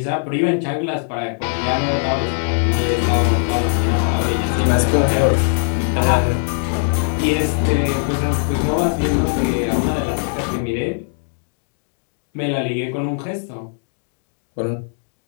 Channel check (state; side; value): silent; right; digital silence